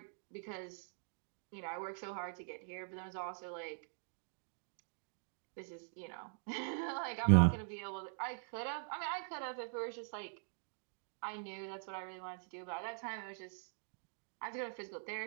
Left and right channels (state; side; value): silent; left; digital silence